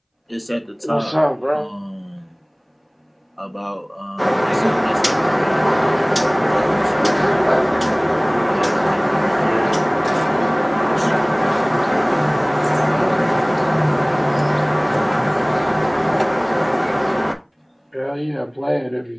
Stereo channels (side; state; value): both; identical; correlation 1.00